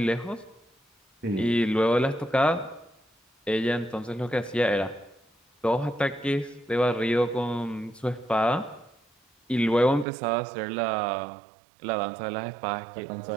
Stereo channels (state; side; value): drops out; left; at 10.1 s